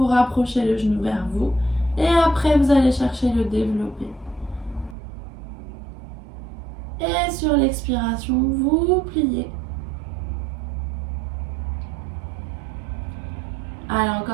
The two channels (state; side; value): drops out; left; at 5.0 s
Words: rapprochez le genou vers vous et après, vous allez chercher le développé. Et sur l'expiration, vous pliez. Allez,